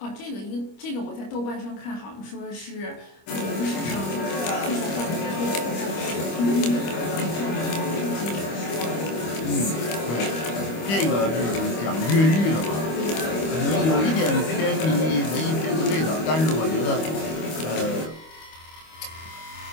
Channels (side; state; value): right; late; 25 ms